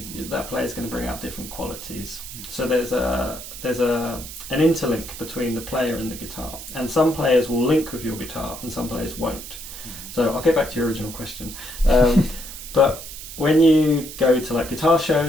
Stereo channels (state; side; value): noise; right; hiss, 12 dB below the sound